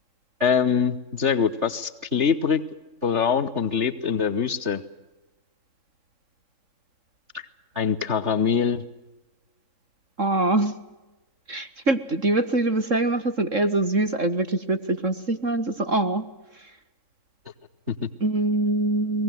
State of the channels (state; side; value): late; left; 3.3 ms